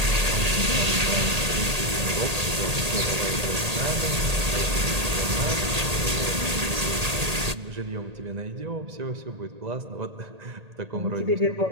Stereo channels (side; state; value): left; late; 1.8 ms